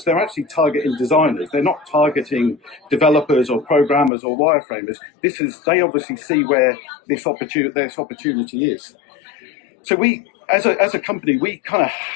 they're actually targeting designers. They're not targeting developers or programmers or wireframers. They obviously see where this opportunity is. So we, as a company, we kind of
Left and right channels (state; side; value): drops out; right; at 4.1 s